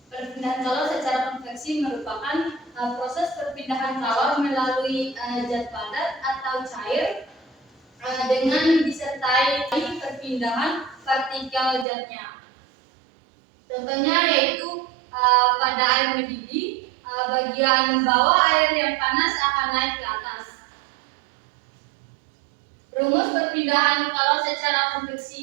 Perpindahan kalor secara konveksi merupakan proses perpindahan kalor melalui zat padat atau cair dengan disertai perpindahan partikel zatnya. Contohnya yaitu pada air mendidih, bagian bawah air yang panas akan naik ke atas. Rumus perpindahan kalor secara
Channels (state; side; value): drops out; left; at 11.9 s